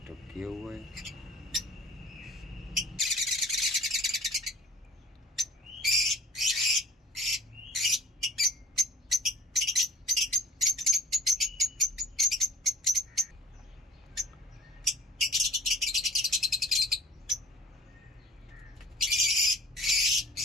किए हुए है।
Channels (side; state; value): both; normal; correlation 0.44